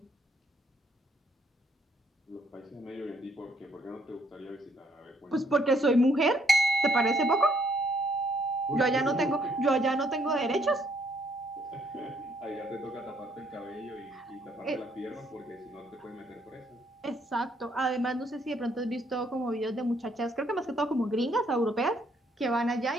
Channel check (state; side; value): normal; both; correlation 0.68